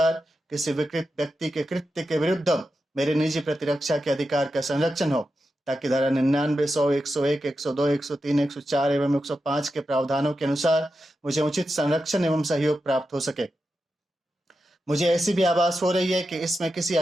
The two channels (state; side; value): normal; both; correlation 0.89